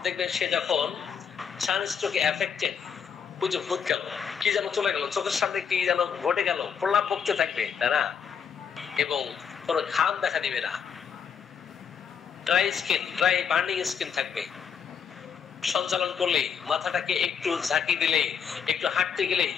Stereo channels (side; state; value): right; quieter; 7.1 dB